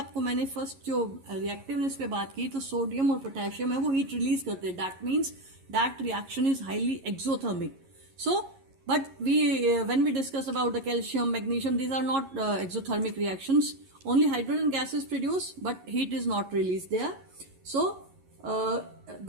मैंने फर्स्ट जो रिएक्टिवनेस पे बात की, तो सोडियम और पोटेशियम है वो हीट रिलीज करते हैं। That means that reaction is highly exothermic. So but when we discuss about the calcium, magnesium, these are not exothermic reactions. Only hydrogen gas is produced, but heat is not released there. So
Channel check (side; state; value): left; late; 11 ms